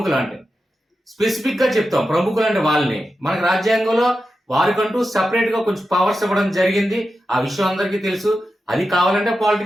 అంటే స్పెసిఫిక్ గా చెప్తాం ప్రముఖులు అంటే వాళ్ళని. మనకి రాజ్యాంగంలో వారికంటూ సెపరేట్ గా కొంచెం పవర్స్ ఇవ్వడం జరిగింది. ఆ విషయం అందరికీ తెలుసు. అది కావాలంటే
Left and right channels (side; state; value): both; normal; correlation 0.90